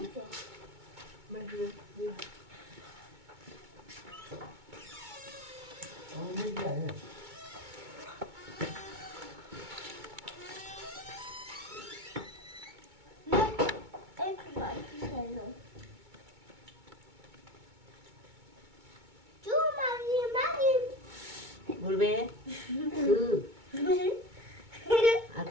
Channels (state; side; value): late; left; 2.2 ms